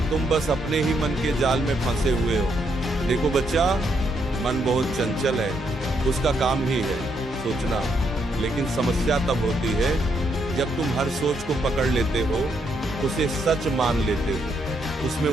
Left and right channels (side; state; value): both; normal; correlation 0.76